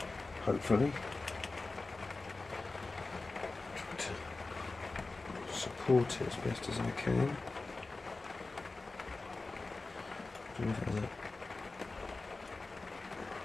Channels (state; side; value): quieter; right; 3.5 dB